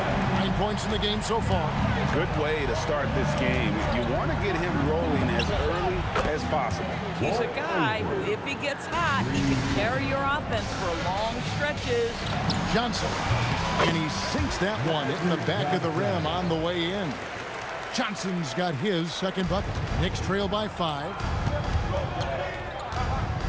9 points in the game so far. Good way to start this game. You want to get him rolling as early as possible. He's a guy who, if he gets hot, he can carry your offense for long stretches. Johnson, and he sinks that one in the back of the rim on the way in. Johnson's got his second bucket. Knicks trail by 5.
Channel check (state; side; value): identical; both; correlation 1.00